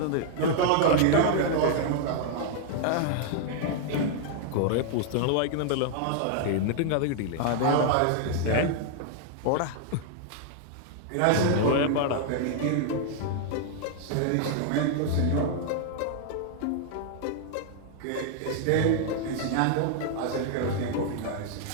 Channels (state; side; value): different; both; correlation 0.00